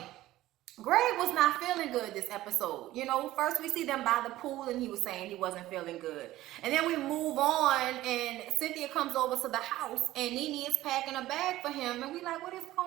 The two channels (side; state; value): left; quieter; 15.7 dB